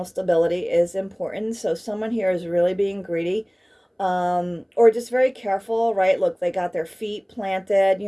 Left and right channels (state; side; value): identical; both; correlation 1.00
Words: stability is important. So someone here is really being greedy, or just very careful, right? Look, they got their feet planted,